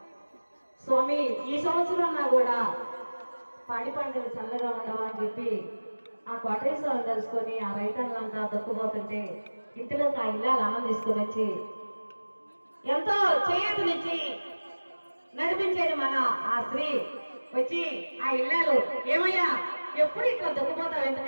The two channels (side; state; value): both; inverted; correlation -1.00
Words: స్వామి ఈ సంవత్సరం నా కూడా పాడి పంటలు చల్లగా ఉండవా అని చెప్పి ఆ కోటేశ్వరం తెలుసుకొని ఆ రైతన్నంతా దొక్కుపోతుంటే ఇంటిలోకి ఆ ఇల్లాలు అన్నం తీసుకుని వచ్చి ఎంతో చేతునిచ్చి నడిపించేది మన ఆ స్త్రీ వచ్చి ఆ ఇల్లాలు, ఏమయ్యా ఎప్పుడు ఇట్లా దొక్కుపోతావు